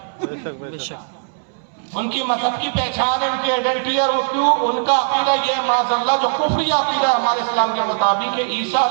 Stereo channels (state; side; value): silent; left; 66 dB below the other